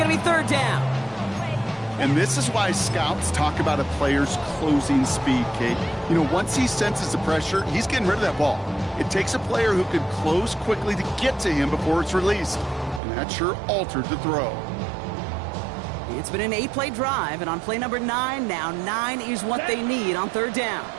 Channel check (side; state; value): left; drops out; at 13.0 s